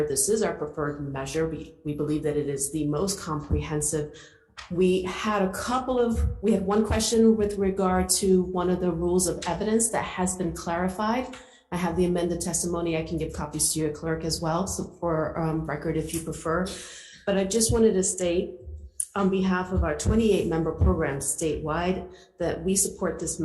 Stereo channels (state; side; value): identical; both; correlation 1.00